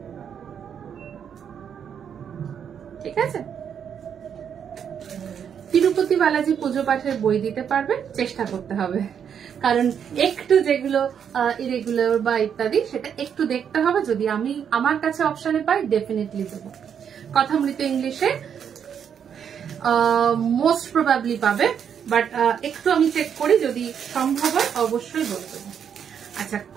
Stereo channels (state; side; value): quieter; left; 8.0 dB